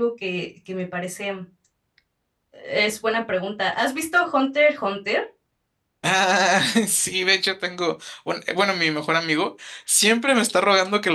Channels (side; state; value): both; identical; correlation 1.00